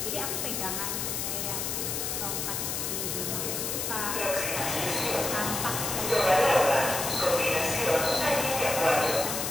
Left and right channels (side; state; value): left; noise; hiss, 2 dB below the sound